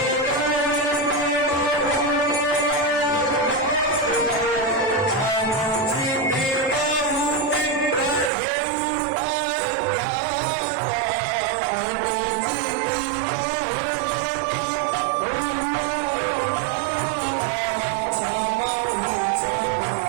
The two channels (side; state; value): left; drops out; at 8.3 s